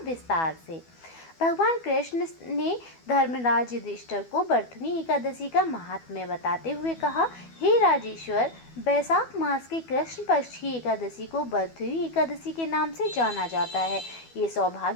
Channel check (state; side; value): late; right; 12 ms